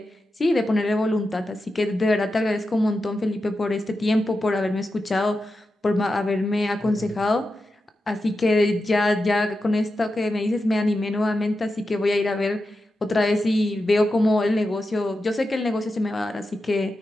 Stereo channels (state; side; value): normal; both; correlation 0.90